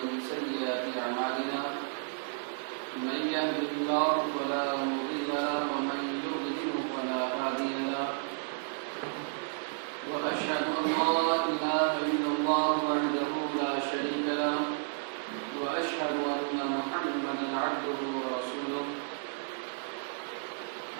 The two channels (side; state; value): left; silent; digital silence